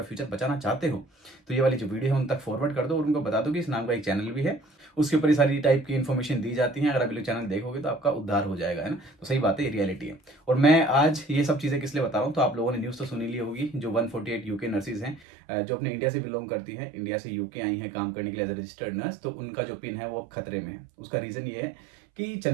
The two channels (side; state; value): left; drops out; at 15.2 s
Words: फ्यूचर बचाना चाहते हो तो ये वाली जो वीडियो है उन तक फॉरवर्ड कर दो, और उनको बता दो कि इस नाम का एक चैनल भी है, उसके ऊपर ये सारी टाइप की इन्फॉर्मेशन दी जाती है। अगर आप लोग चैनल देखोगे तो आपका उद्धार हो जाएगा, है ना। तो सही बात है, ये रियलिटी है। और मैं आज ये सब चीज़ें किस लिए बता रहा हूँ, तो आप लोगों ने न्यूज़ तो सुनी ली होगी, जो 148 यूके नर्सिस हैं जो अपने इंडिया से बिलोंग करती हैं, इंडिया से यूके आई हैं काम करने के लिए एज ए रजिस्टर्ड नर्स, तो उनका जो पिन है वो खतरे में है। उसका रीज़न ये है कि